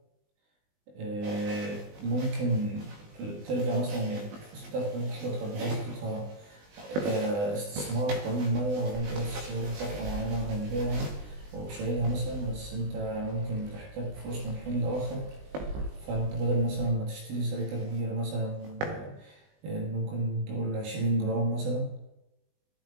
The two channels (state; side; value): late; left; 20 ms